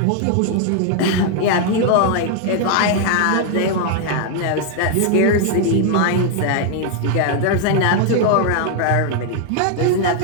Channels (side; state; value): both; different; correlation 0.00